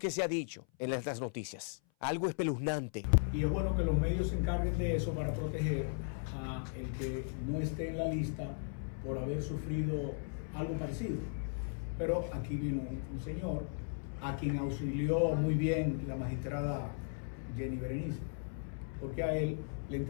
se ha dicho en las noticias. Algo espeluznante. Y es bueno que los medios se encarguen de eso para proteger a el que no esté en la lista por haber sufrido algo parecido. Pero aquí vino un señor a quien auxilió muy bien la magistrada Jenny Berenice, porque a él le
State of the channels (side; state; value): right; silent; 53 dB below the other